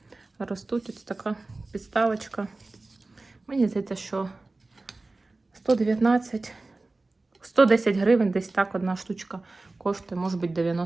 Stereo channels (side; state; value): left; quieter; 3.2 dB